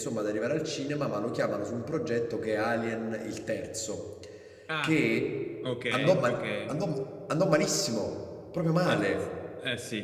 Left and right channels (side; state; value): both; identical; correlation 1.00